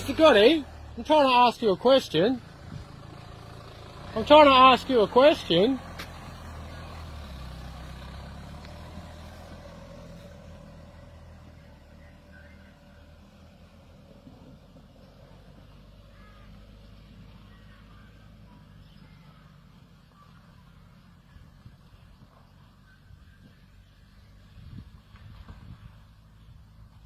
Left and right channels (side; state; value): both; identical; correlation 1.00